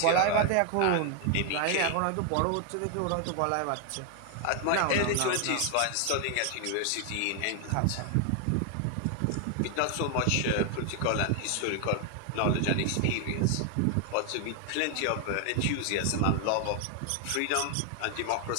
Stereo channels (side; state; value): both; different; correlation 0.00